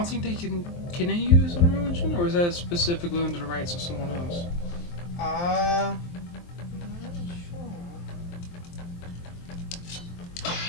think they can. Can they use Unreal Engine, or is that specifically under the rights of someone else? I'm not sure.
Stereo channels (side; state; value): right; late; 23 ms